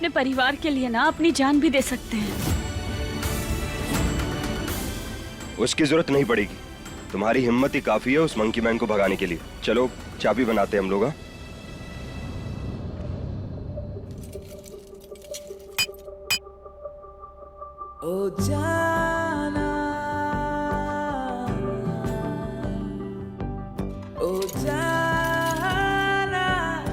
परिवार के लिए ना अपनी जान भी दे सकते हैं। उसकी जरूरत नहीं पड़ेगी, तुम्हारी हिम्मत ही काफी है उस मंकी मैन को भगाने के लिए। चलो चाबी बनाते हैं हम लोग। ओ जाना, ओ जाना,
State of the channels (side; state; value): both; identical; correlation 1.00